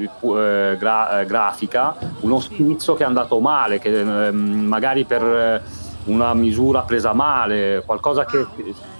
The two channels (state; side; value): inverted; both; correlation -1.00